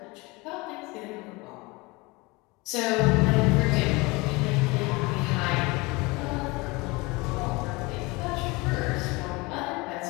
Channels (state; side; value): quieter; right; 24.6 dB